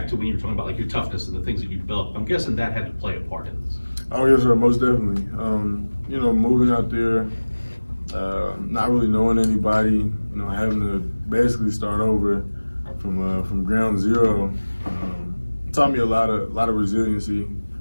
to when you were talking about like your toughness and the things that you developed. I'm guessing that had to play a part in this. Oh yes, sir, most definitely. You know, moving out there, not really knowing anybody, you know, having to basically start over from ground zero, taught me a lot of resiliency,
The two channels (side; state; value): both; inverted; correlation -1.00